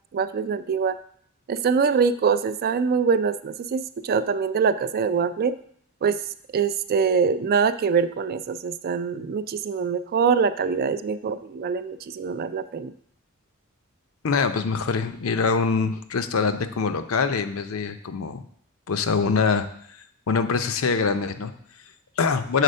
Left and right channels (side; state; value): both; normal; correlation -0.01